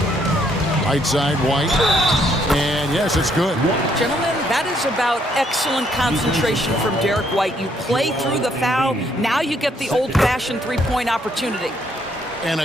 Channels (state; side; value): normal; both; correlation 0.70